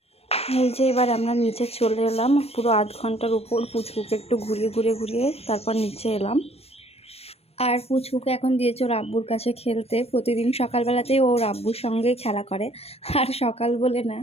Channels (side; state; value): right; late; 0.29 ms